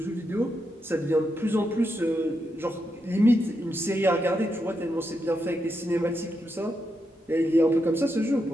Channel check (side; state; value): both; normal; correlation 0.84